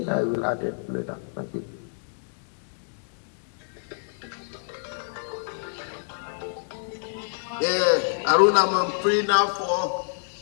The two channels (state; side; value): silent; right; digital silence